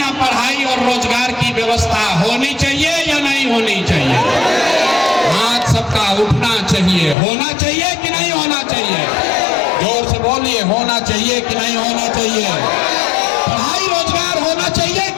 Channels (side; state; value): right; drops out; at 7.2 s